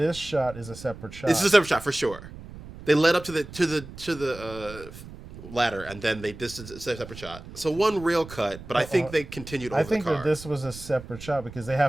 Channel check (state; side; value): noise; right; rumble, 15 dB below the sound